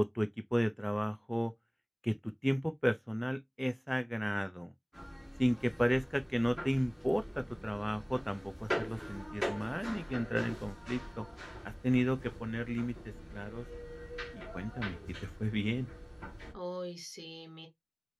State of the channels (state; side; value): identical; both; correlation 1.00